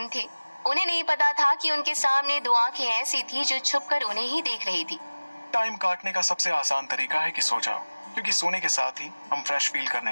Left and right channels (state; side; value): inverted; both; correlation -1.00